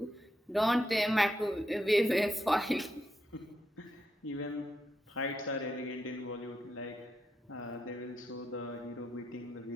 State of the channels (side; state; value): both; normal; correlation 0.83